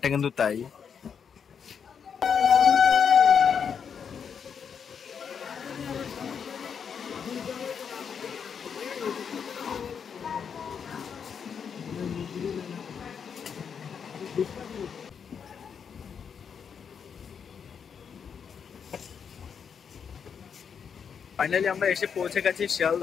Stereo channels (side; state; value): right; quieter; 7.0 dB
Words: কিন্তু তাই। ফাইনালি আমরা এসে পৌঁছে গেছি